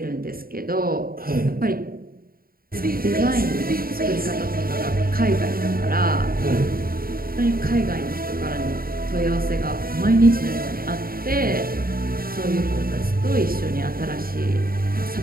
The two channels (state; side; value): late; left; 0.43 ms